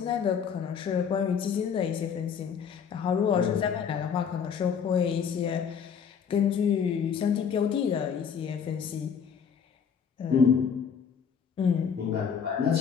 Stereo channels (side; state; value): right; quieter; 7.0 dB